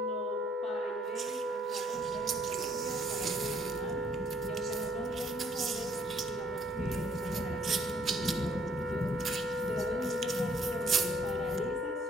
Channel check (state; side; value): normal; both; correlation 0.64